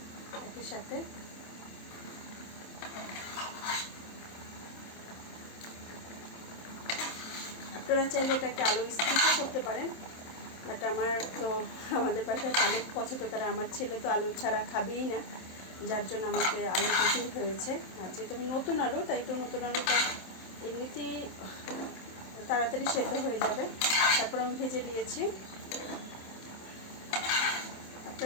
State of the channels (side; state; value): right; late; 27 ms